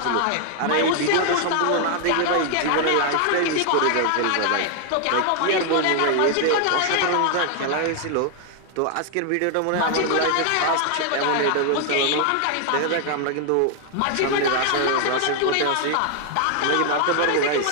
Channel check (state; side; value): different; both; correlation 0.00